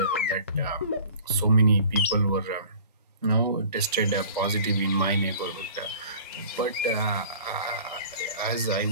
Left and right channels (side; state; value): both; inverted; correlation -0.46